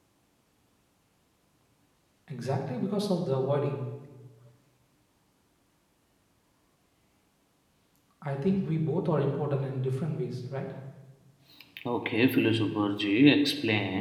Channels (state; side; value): identical; both; correlation 1.00